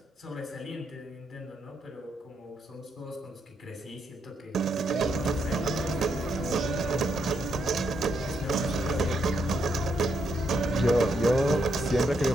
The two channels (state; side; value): normal; both; correlation 0.78